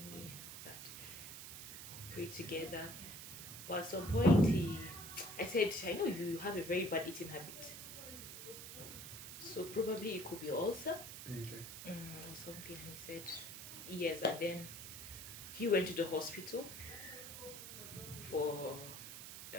me," and all that. Pray together. But at some point, I said, "I know you have a very bad eating habit, so probably it could be ulcer." Okay. Or something. And he said, "Yes." And then he went to the hospital for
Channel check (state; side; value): noise; right; hiss, 10 dB below the sound